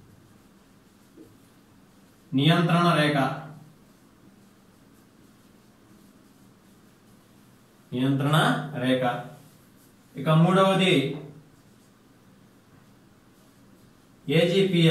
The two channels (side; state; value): both; identical; correlation 1.00